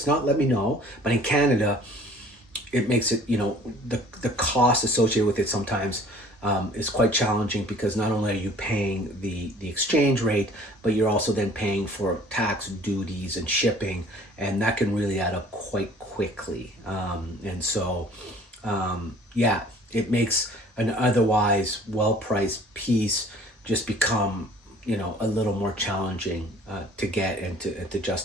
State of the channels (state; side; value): normal; both; correlation 0.51